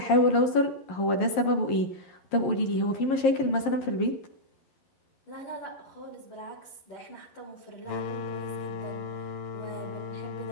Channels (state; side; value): late; right; 11 ms